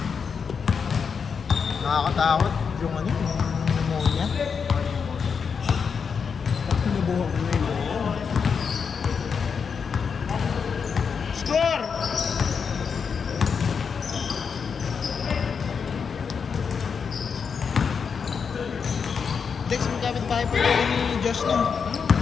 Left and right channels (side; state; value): right; quieter; 6.1 dB